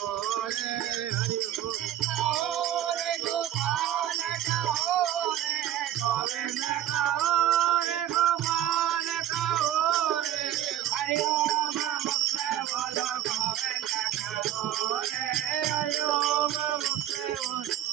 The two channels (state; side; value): quieter; left; 12.0 dB